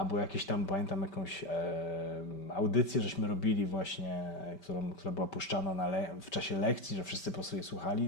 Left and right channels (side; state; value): right; late; 5.2 ms